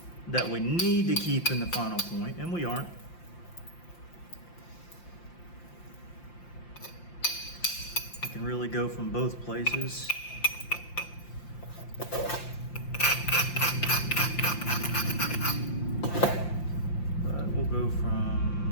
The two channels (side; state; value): right; late; 5.8 ms